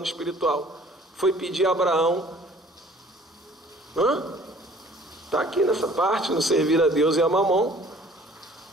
espiritual? Foi pedir a Abraão, está aqui nessa parte, no servir a Deus e a mamon.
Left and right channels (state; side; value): normal; both; correlation 0.53